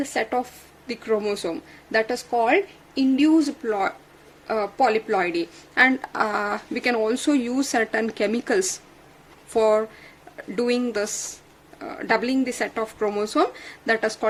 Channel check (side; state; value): both; identical; correlation 1.00